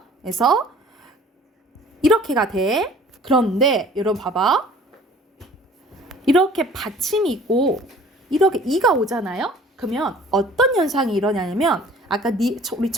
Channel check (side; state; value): both; normal; correlation 0.50